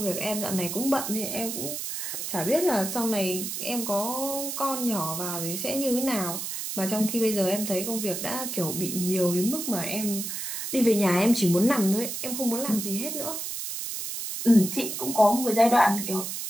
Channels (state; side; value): noise; right; hiss, 5 dB below the sound